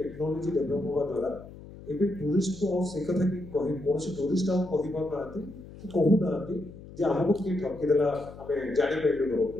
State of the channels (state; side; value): noise; left; hum, 16 dB below the sound